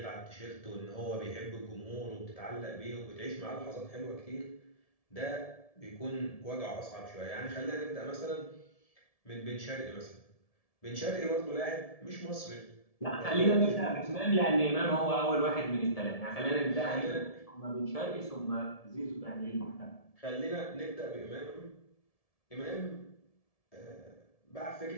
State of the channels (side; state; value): right; late; 1.7 ms